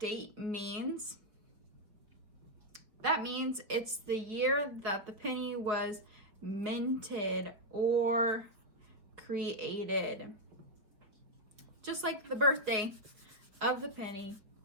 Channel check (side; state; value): left; late; 4.5 ms